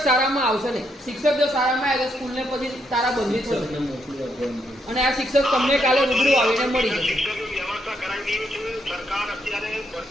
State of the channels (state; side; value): normal; both; correlation 0.77